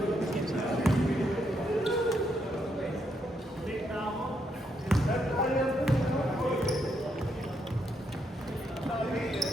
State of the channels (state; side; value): normal; both; correlation 0.77